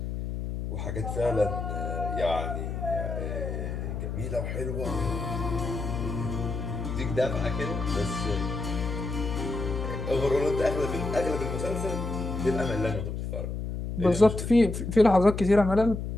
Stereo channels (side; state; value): left; noise; hum, 4 dB below the sound